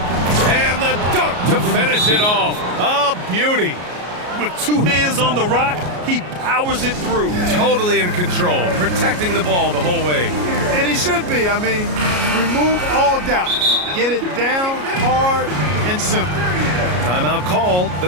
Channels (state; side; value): late; left; 33 ms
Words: And the dunk to finish it off. A beauty. With 2 hands on the rock, he powers it through. Totally in control, protecting the ball the whole way. And he should be. I mean, remove all doubt. Get it down, hard, and simple. Timeout called, the